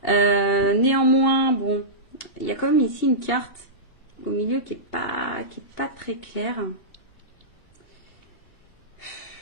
Néanmoins, bon, il y a quand même ici une carte au milieu qui est pas très claire.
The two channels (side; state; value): right; late; 2.7 ms